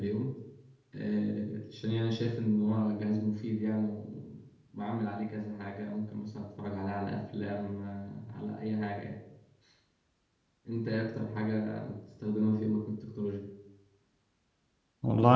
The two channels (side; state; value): both; identical; correlation 1.00